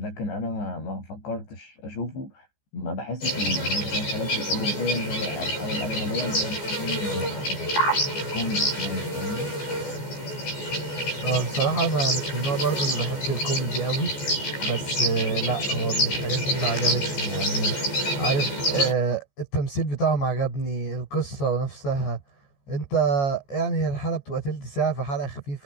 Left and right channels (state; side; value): late; right; 14 ms